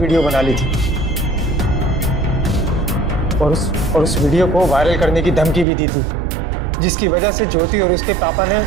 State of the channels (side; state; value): left; drops out; at 5.7 s